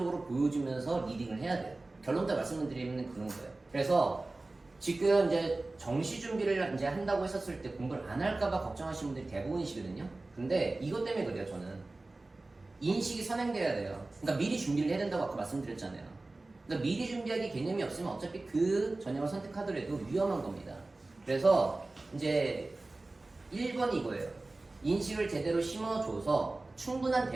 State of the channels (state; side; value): quieter; left; 3.1 dB